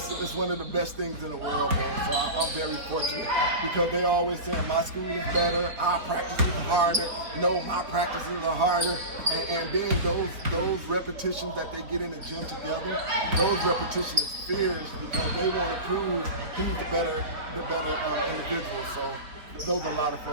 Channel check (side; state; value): left; late; 3.7 ms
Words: one of the best things in the world, man. So I'm very fortunate because they always say my school is better, our practices are harder. No, my practices are harder. And then those repetitions that they get in the gym together, those repetitions is fierce because they want to prove who's the better individual. So those are a lot of